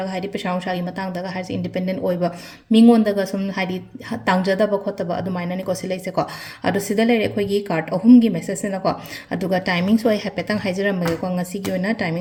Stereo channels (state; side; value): identical; both; correlation 1.00